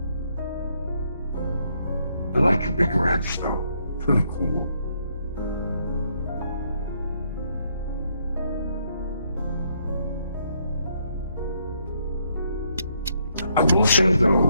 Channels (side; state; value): both; inverted; correlation -0.73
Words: I like your big rats, though. It's really cool. I will say,